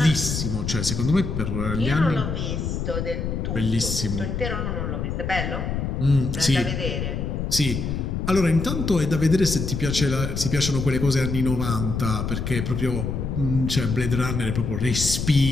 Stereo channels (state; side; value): noise; left; rumble, 3 dB below the sound